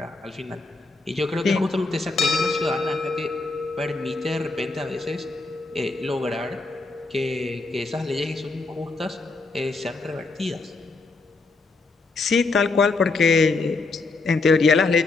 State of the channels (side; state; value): right; quieter; 3.7 dB